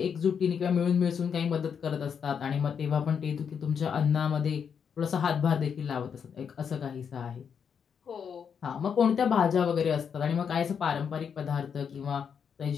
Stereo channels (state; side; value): quieter; right; 7.1 dB